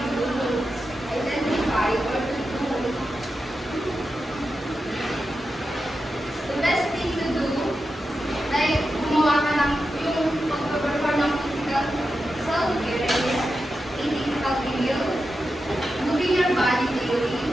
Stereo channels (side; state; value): both; normal; correlation 0.90